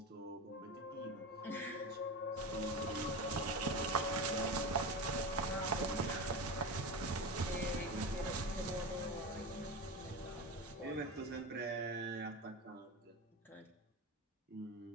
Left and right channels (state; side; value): normal; both; correlation 0.24